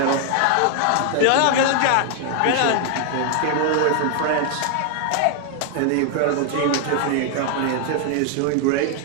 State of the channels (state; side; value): different; both; correlation 0.00